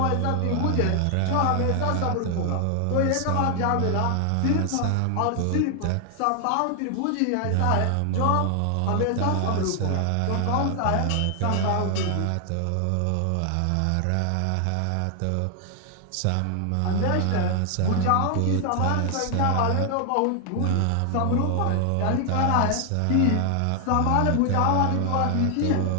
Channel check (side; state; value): both; different; correlation 0.00